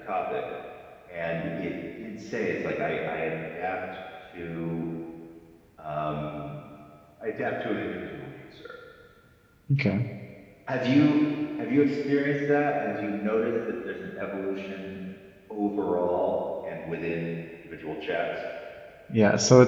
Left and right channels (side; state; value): both; identical; correlation 1.00